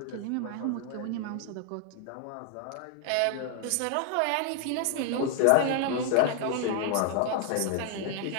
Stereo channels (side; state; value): both; different; correlation 0.00